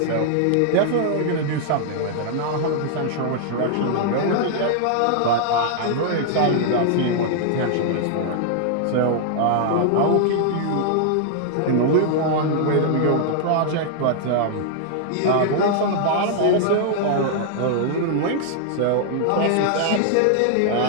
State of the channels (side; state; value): both; different; correlation -0.01